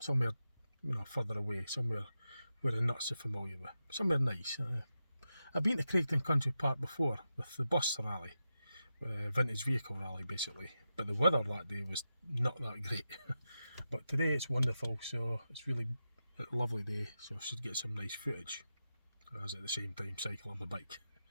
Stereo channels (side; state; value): both; inverted; correlation -0.90